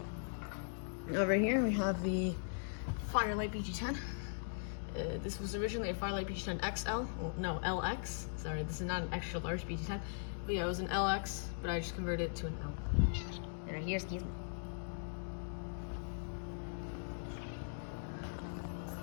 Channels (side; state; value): right; silent; digital silence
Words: Over here we have the Firelight BG10. This was originally a Firelight BG10 XL. Well, no, LX. Sorry, this is not an extra large BG10. But yeah, it was an LX, but I just converted it to an L. And right here, excuse me.